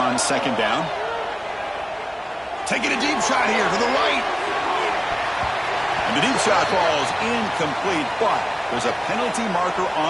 second down. Taking a deep shot here to the right. And the deep shot falls incomplete, but there's a penalty marker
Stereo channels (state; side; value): identical; both; correlation 1.00